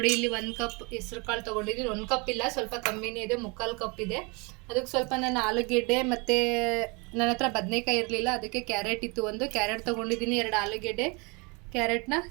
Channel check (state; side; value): quieter; left; 29.6 dB